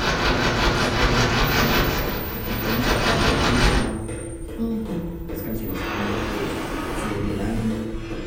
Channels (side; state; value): both; identical; correlation 1.00